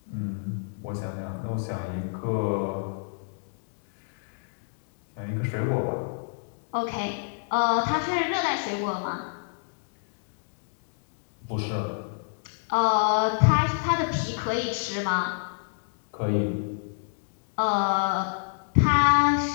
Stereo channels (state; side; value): silent; right; digital silence